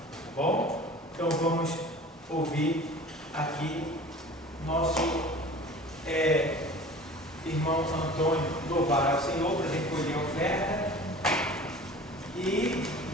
Tá bom? Então vamos ouvir aqui nosso irmão Antônio louvar ao Senhor para recolher a oferta e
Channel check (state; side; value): normal; both; correlation 0.42